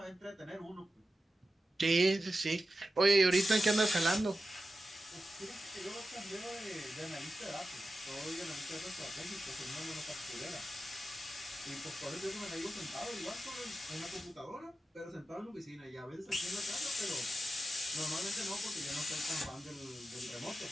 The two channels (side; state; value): both; normal; correlation 0.91